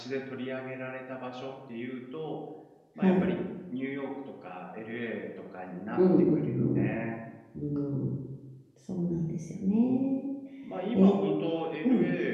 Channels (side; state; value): both; identical; correlation 1.00